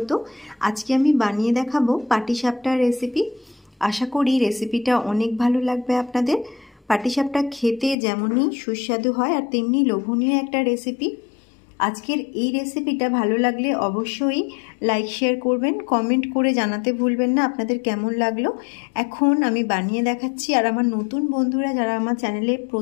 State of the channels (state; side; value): drops out; right; at 8.0 s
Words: আজকে আমি বানিয়ে দেখাবো পাটিসাপটার রেসিপি। আশা করি রেসিপিটা অনেক ভালো লাগবে আপনাদের। পাটিসাপটা খেতে যেমনই সুস্বাদু হয় আর তেমনি লোভনীয় একটা রেসিপি। আজকের এই রেসিপিটা ভালো লাগলে অবশ্যই লাইক শেয়ার করবেন, কমেন্ট করে জানাতে ভুলবেন না আপনাদের কেমন লাগলো। এখন আমি বানিয়ে দেখাচ্ছি। আর আমার নতুন বন্ধুরা যারা আমার চ্যানেলে